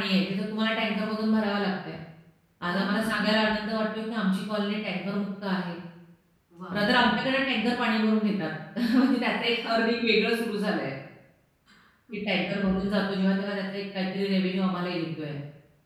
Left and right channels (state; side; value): identical; both; correlation 1.00